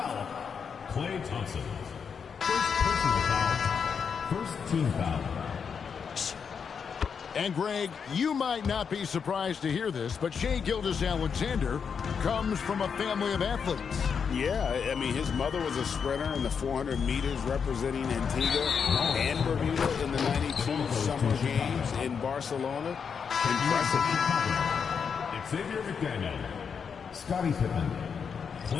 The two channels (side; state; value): right; quieter; 6.5 dB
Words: Klay Thompson. First personal foul. First team foul. And Greg, you might not be surprised to hear this, but Shai Gilgeous-Alexander comes from a family of athletes. Yeah, I mean, his mother was a sprinter in the 400 meters representing Antigua and Bermuda in the 92 Summer Games in Barcelona. Impressive. Xavier McDaniel, Scottie Pippen,